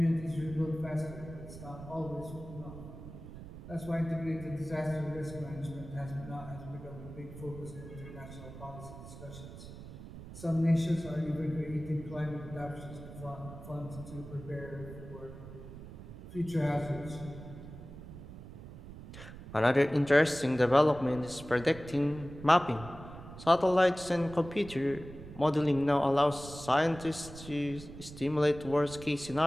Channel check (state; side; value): noise; right; rumble, 14 dB below the sound